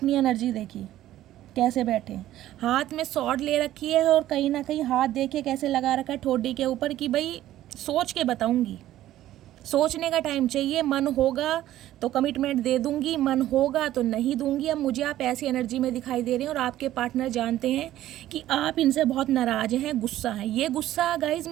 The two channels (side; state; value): left; quieter; 13.7 dB